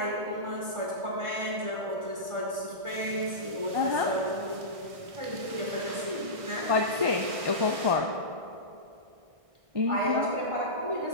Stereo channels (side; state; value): left; late; 1.6 ms